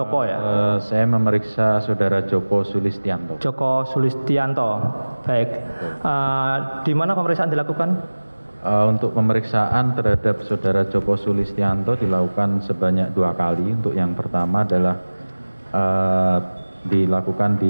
ya. Saya memeriksa saudara Joko Sulistianto. Joko Sulistianto. Baik. Di mana pemeriksaan dilakukan? Untuk pemeriksaan terhadap saudara Joko Sulistianto dilakukan sebanyak 2 kali. Untuk yang pertama adalah dilakukan di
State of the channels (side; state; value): both; inverted; correlation -1.00